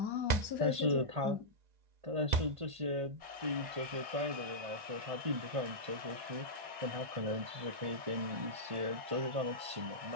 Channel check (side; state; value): left; late; 1.5 ms